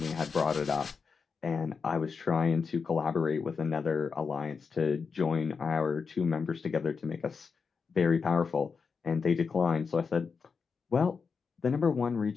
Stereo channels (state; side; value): quieter; right; 5.4 dB